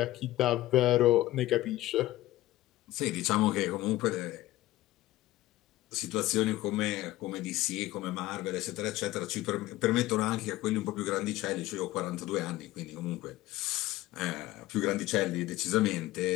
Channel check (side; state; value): right; quieter; 16.7 dB